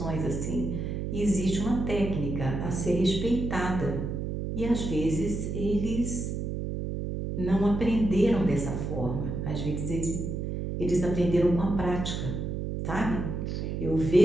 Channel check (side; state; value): right; noise; hum, 3 dB below the sound